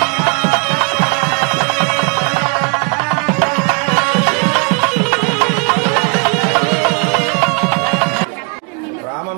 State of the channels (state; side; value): quieter; left; 32.2 dB